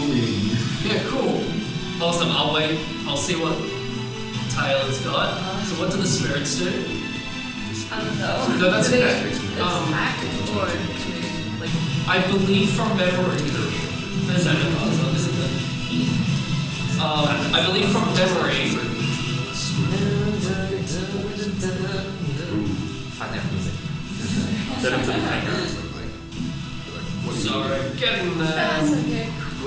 Yeah, cool. Awesome. I'll wait. I'll see what Taylor's got. So what do the spirits do? I don't know. No, that's Do they okay. attack or do they, like, I believe from memory. There's that in puzzle, isn't there? I believe from memory. Find that music. Set him to the background. Sorry, getting there. that's okay.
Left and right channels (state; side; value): identical; both; correlation 1.00